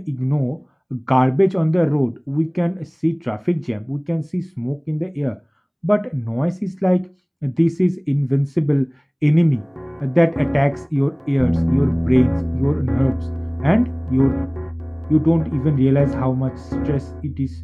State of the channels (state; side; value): identical; both; correlation 1.00